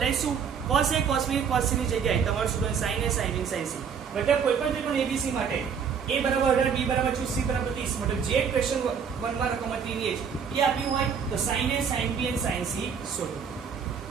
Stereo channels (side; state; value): left; quieter; 6.8 dB